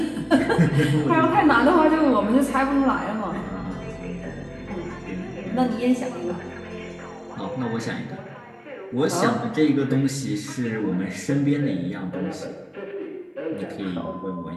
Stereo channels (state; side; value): identical; both; correlation 1.00